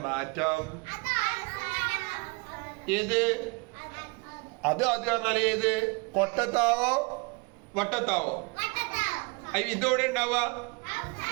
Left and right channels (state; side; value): quieter; left; 29.3 dB